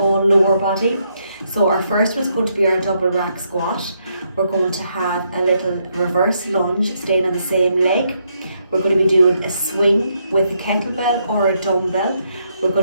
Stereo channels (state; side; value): inverted; both; correlation -0.77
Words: lower body. So our first one is going to be our double rack squat. We're going to have a little reverse lunge, staying on the same leg. We're going to be doing a swing with a kettlebell or a dumbbell. We're